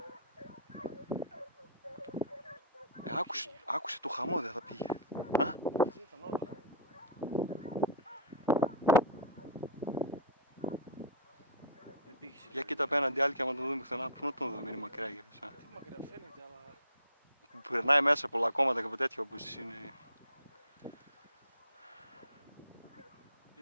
Άκουσε το χαμό, δεν θα πήγε. Α? μαζί ήταν όλα. Δεν πήγε σε Για κοίτα απέναντι άλλη και άμα τον δούμε πουθενά, πού να τον δούμε, είναι μακριά για εσά. Τι μακριά φαίνεται, αλλά... Που περνάει μέσα πολλά κόμματα και από τέτοια όπως είναι.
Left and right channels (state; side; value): inverted; both; correlation -0.32